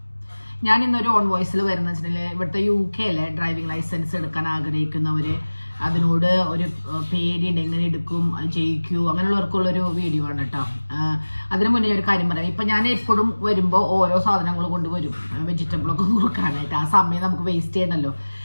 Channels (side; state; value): both; inverted; correlation -1.00